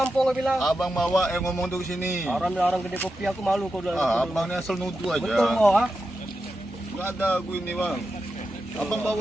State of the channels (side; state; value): both; normal; correlation 0.89